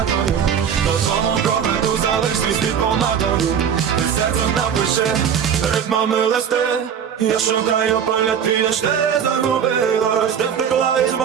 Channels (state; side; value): quieter; left; 8.0 dB